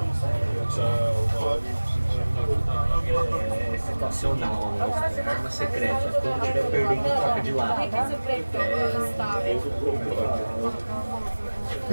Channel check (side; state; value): both; inverted; correlation -1.00